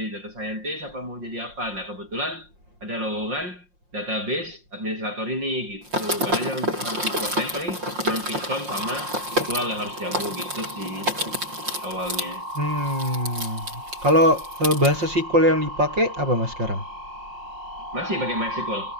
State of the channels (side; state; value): left; late; 5.6 ms